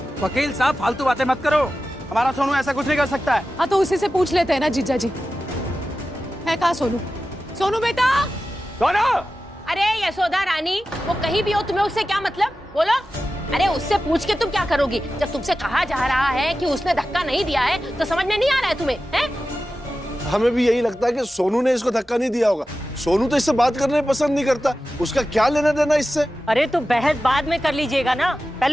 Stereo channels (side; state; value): both; normal; correlation 0.94